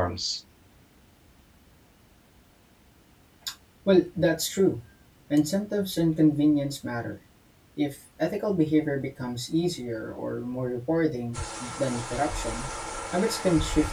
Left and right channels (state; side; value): identical; both; correlation 1.00